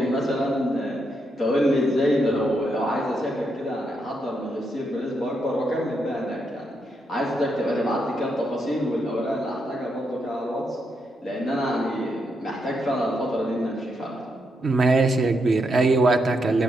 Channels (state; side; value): normal; both; correlation 0.80